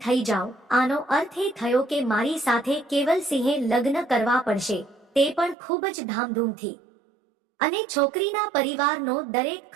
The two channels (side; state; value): left; drops out; at 5.6 s